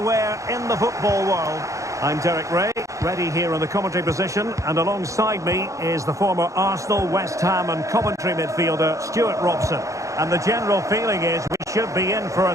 in the football world. I'm Derek Ray, ready here in the commentary position, and alongside me is the former Arsenal, West Ham and Coventry midfielder Stuart Robson. And the general feeling is we should be in for a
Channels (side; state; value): left; late; 0.15 ms